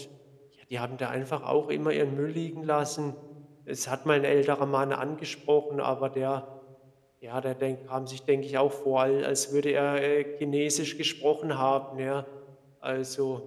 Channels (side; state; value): both; identical; correlation 1.00